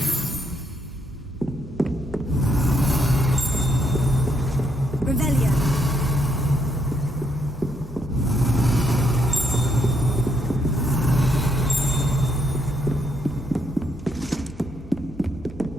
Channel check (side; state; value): both; normal; correlation 0.75